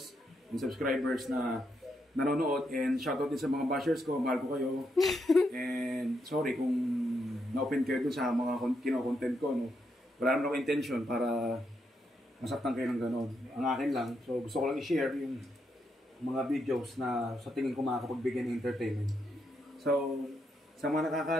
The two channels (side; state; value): both; normal; correlation 0.80